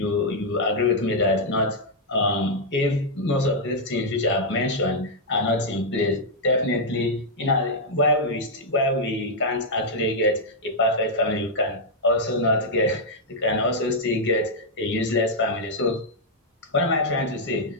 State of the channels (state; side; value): normal; both; correlation -0.04